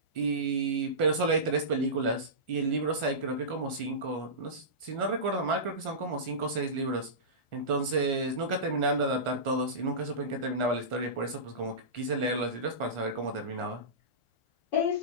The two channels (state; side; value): late; right; 1.4 ms